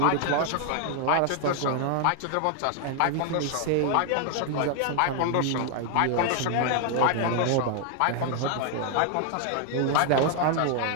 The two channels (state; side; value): different; both; correlation 0.00